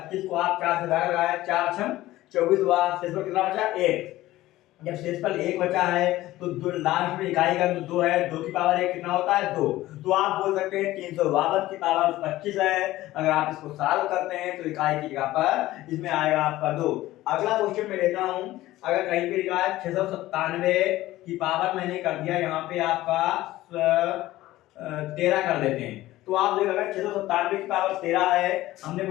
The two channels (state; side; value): quieter; right; 16.3 dB